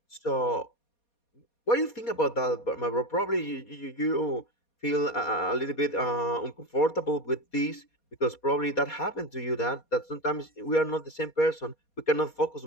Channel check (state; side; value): late; right; 4.2 ms